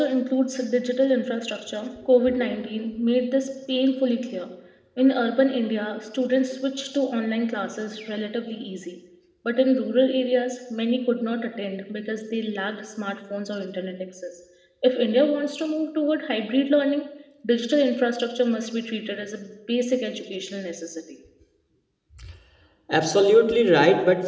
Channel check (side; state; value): both; identical; correlation 1.00